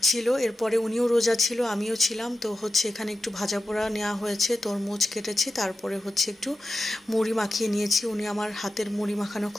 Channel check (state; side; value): normal; both; correlation 0.92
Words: ছিল। এরপরে উনিও রোজা ছিল, আমিও ছিলাম। তো এখানে একটু ভাজা পোড়া নেওয়া হয়েছে, তরমুজ কেটেছি, তারপরে একটু মুড়ি মাখিয়ে নিয়েছি। উনি আমার হাতের মুড়ি মাখানো